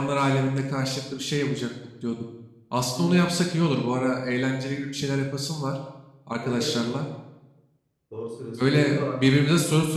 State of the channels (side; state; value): both; identical; correlation 1.00